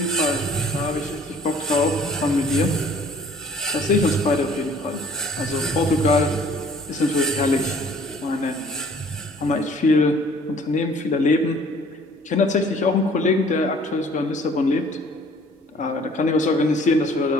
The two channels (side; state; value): both; normal; correlation 0.54